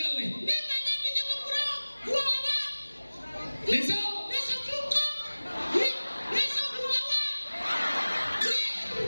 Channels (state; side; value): inverted; both; correlation -1.00